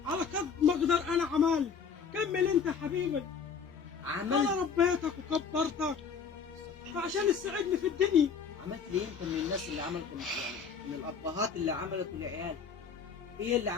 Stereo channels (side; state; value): right; quieter; 6.2 dB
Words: على قد ما اقدر انا عملت. كمل انت يا حبيبي. عملت انا ربيتك وكبرتك فعشان تساعدني في الدنيا. عملت ليه انت من الناس اللي عملتوا يعني من الابهات اللي عملتوا لعيال؟ ايه اللي